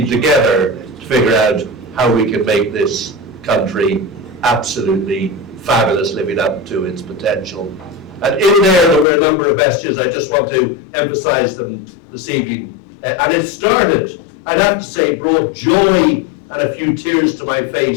together to figure out how we can make this country absolutely fabulous, living up to its potential. And in there were a number of messages. I just want to emphasize them this evening. And it started, I'd have to say, brought joy and a few tears to my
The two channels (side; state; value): right; drops out; at 9.1 s